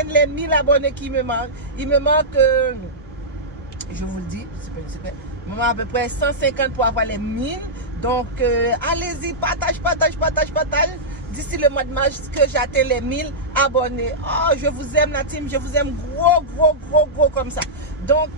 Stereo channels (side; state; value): both; normal; correlation -0.12